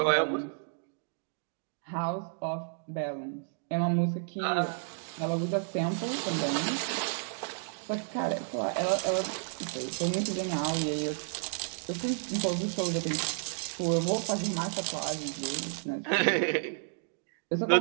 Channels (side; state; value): left; silent; digital silence